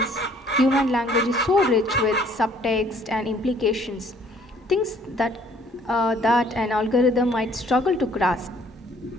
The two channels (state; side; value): normal; both; correlation 0.59